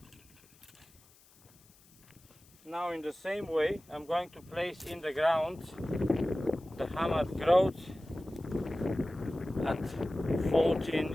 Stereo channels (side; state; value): left; noise; hiss, 28 dB below the sound